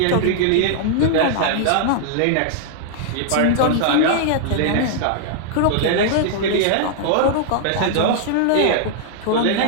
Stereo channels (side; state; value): both; different; correlation -0.01